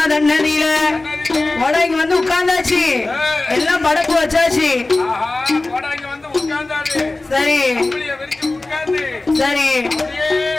தன்னதியில கோடாங்கி வந்து உட்கார்ந்தாச்சு, எல்லாம் படப்பு வச்சாச்சு. சரி சரி.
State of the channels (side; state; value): right; quieter; 3.1 dB